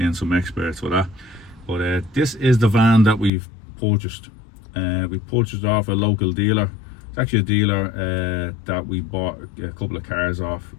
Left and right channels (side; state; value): right; drops out; at 3.3 s